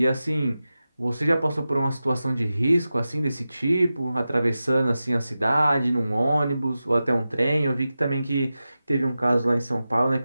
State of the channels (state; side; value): inverted; both; correlation -0.93